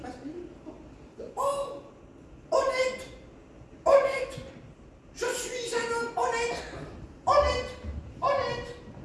Oh, honnête, honnête. Je suis un homme honnête, honnête, honnête.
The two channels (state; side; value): identical; both; correlation 1.00